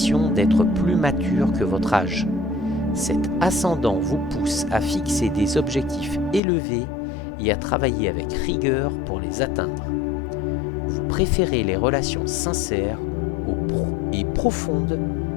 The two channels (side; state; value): right; drops out; at 6.4 s